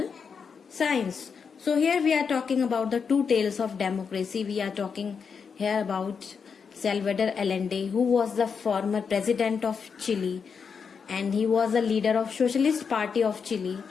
science. So here we are talking about the two tales of democracy. We are talking here about Salvador Allende, who was the former president of Chile and he was a leader of Socialist Party of Chile.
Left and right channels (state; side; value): quieter; right; 6.1 dB